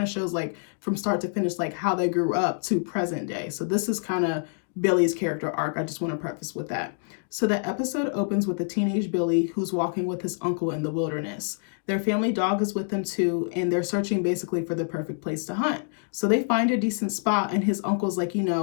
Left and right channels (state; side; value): silent; right; digital silence